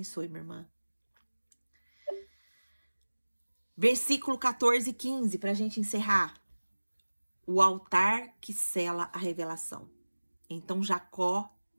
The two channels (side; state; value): both; inverted; correlation -1.00